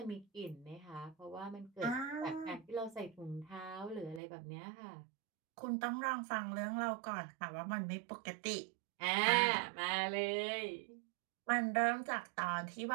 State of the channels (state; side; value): drops out; left; at 4.2 s